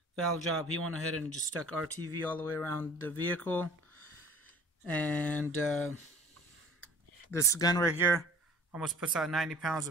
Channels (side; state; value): both; normal; correlation 0.48